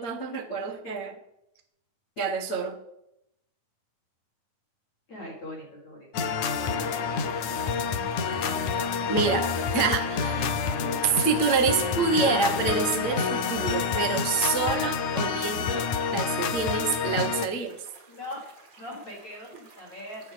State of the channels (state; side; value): late; right; 9.7 ms